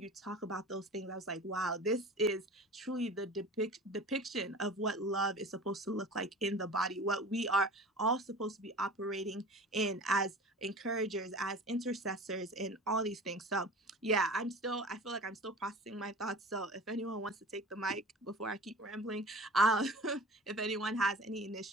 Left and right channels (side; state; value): both; normal; correlation 0.38